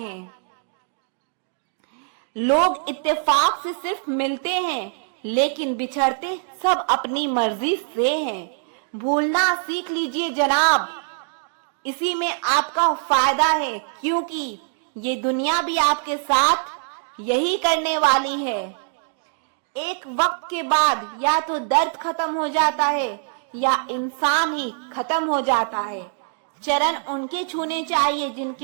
लोग इत्तेफाक से सिर्फ मिलते हैं, लेकिन बिछड़ते सब अपनी मर्जी से हैं। भूलना सीख लीजिए जनाब, इसी में आपका फायदा है, क्योंकि ये दुनिया भी आपके साथ यही करने वाली है। एक वक्त के बाद या तो दर्द खत्म हो जाता है या इंसान ही खत्म हो जाता है। चरण उनके छूने चाहिए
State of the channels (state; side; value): silent; left; 63 dB below the other